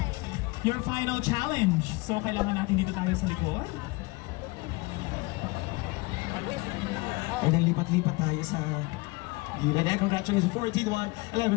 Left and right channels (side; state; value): right; quieter; 24.3 dB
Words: Your final challenge. So, kailangan natin dito tayo sa likod. And then lipat-lipat tayo sa gilid. And congratulations, 14, 1,